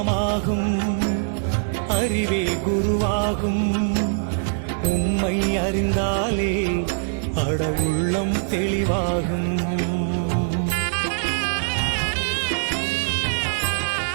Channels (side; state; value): left; silent; digital silence